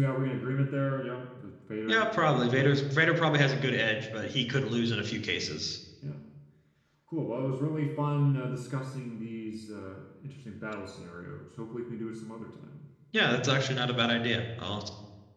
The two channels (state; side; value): identical; both; correlation 1.00